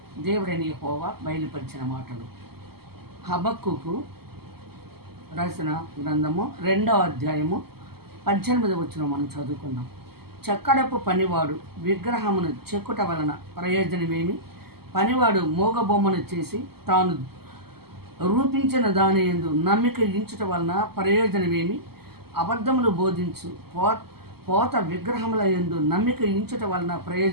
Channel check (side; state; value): left; late; 0.96 ms